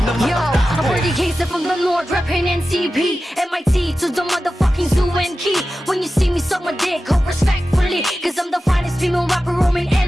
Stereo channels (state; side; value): normal; both; correlation 0.94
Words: na Yo, I'm Birdie Casey from the North, reppin' NCP. MIT to the motherfucking zoo and key. When you see me suck my dick, hope respectfully. Cause I'm the finest female rapper roaming